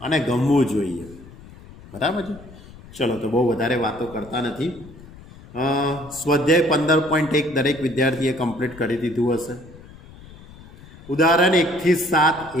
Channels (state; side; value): noise; left; rumble, 20 dB below the sound